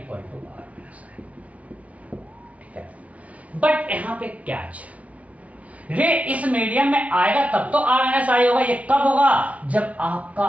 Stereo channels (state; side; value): late; left; 0.067 ms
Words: to r minus i, ठीक है। बट यहाँ पे कैच, रे इस मीडियम में आएगा तब तो r माइनस आई होगा। ये कब होगा, जब आपका